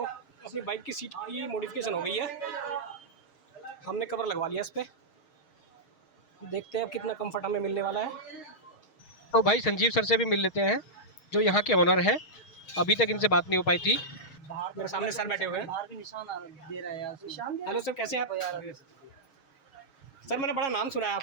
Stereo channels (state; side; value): late; right; 6.4 ms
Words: अपनी बाइक की सीट की मॉडिफिकेशन हो गई है, हमने कवर लगवा लिया इस पर। देखते हैं अब कितना कंफर्ट हमें मिलने वाला है। तो भाई संजीव सर से भी मिल लेते हैं, जो यहाँ के ओनर हैं। अभी तक इनसे बात नहीं हो पाई थी। मेरे सामने सर बैठे हुए हैं। बाहर भी निशान दे रहा है यार, निशान हेलो सर, कैसे हैं आप? सर मैंने बड़ा नाम सुना है